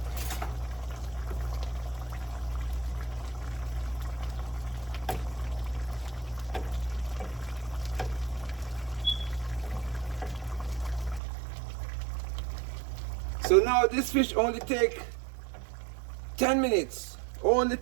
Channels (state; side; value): drops out; left; at 11.2 s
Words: So now this fish only take 10 minutes. Only